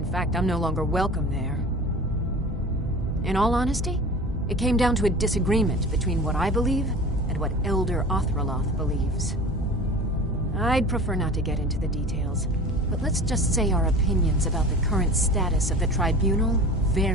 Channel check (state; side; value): normal; both; correlation 0.38